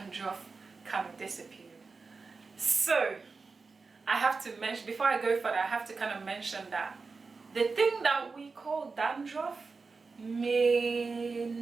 kind of disappeared. So I have to mention, before I go further, I have to kind of mention that the thing that we call dandruff may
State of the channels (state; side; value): quieter; left; 4.4 dB